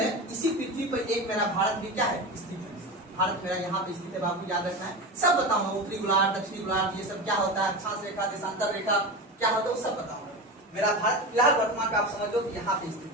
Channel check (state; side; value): normal; both; correlation 0.24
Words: इसी पृथ्वी पर एक मेरा भारत भी क्या है? स्थित है। भारत मेरा यहाँ पे स्थित है बाबू, याद रखना है। सब बताऊंगा, उत्तरी गोलार्ध, दक्षिणी गोलार्ध, ये सब क्या होता है, अक्षांश रेखा, देशांतर रेखा क्या होता है, वो सब बताऊंगा। मेरा भारत फिलहाल वर्तमान में आप समझ लो कि यहाँ पे स्थित